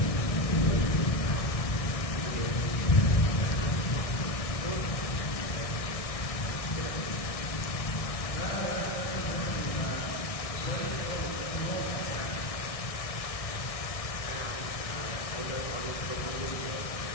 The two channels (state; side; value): late; right; 1.6 ms